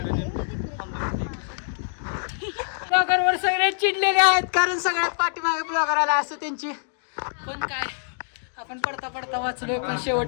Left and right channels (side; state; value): right; silent; digital silence